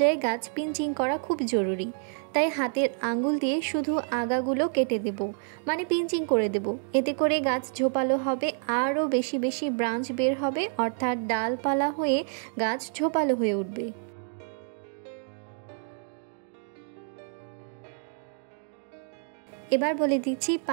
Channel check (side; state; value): left; silent; 59 dB below the other